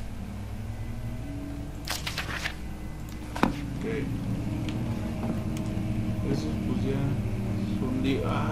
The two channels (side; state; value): both; identical; correlation 1.00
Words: Ok. Esos pues ya son